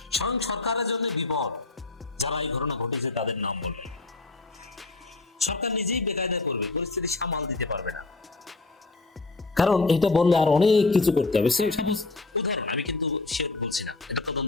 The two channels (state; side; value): quieter; right; 3.4 dB